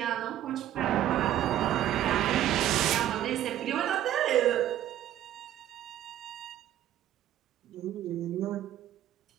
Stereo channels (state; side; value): quieter; left; 12.2 dB